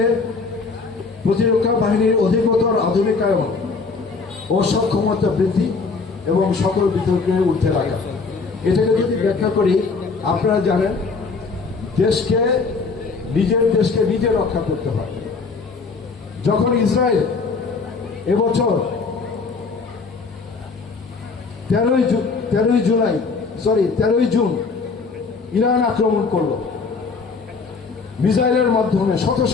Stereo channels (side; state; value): right; quieter; 4.5 dB